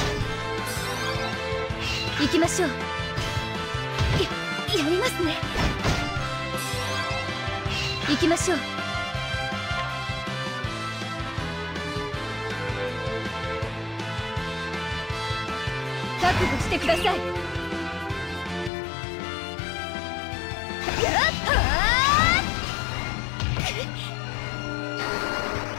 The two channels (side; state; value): right; drops out; at 18.7 s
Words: 行きましょう。やりますね。行きましょう。覚悟してください。